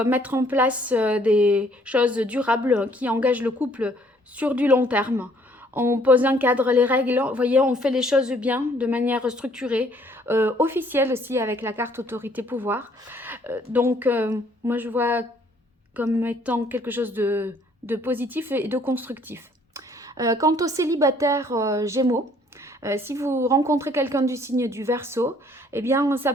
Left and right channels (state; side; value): normal; both; correlation 0.62